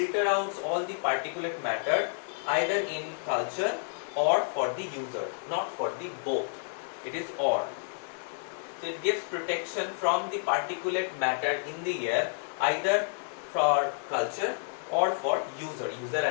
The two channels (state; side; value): silent; right; digital silence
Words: out all the particulate matter either in culture or for the user, not for the both. It is or. So it gives protection from the particulate matter in the air, either for culture or for user